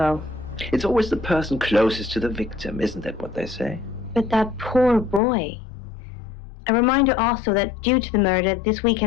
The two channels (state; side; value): drops out; right; at 5.2 s